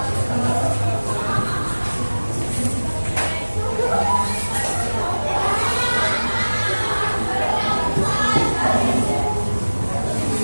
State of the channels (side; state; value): both; inverted; correlation -1.00